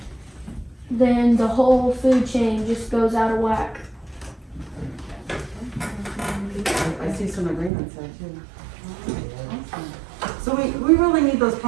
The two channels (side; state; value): left; drops out; at 7.7 s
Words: then the whole food chain just goes out of whack. I see some agreements there too. So we really need those